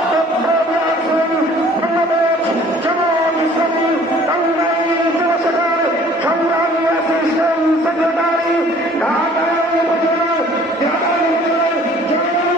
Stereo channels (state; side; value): normal; both; correlation 0.53